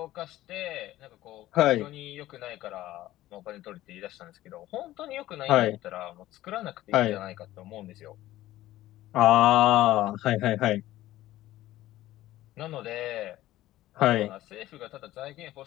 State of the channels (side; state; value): right; quieter; 15.3 dB